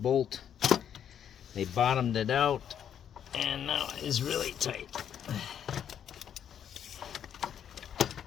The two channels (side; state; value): right; quieter; 9.1 dB